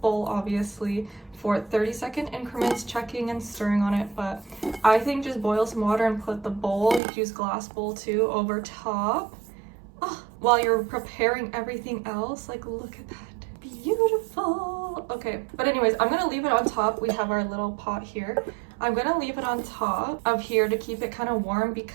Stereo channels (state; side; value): drops out; left; at 7.0 s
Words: bowl, obviously, for 30-second increments, checking and stirring on it, but I think just boil some water and put the bowl, you could use glass bowl too, over top. Oh, while you're preparing everything else, like, look at that, beautiful. Okay, but anyways, I'm gonna leave it on top. We have our little pot here. I'm gonna leave it on top of here to keep it kind of warm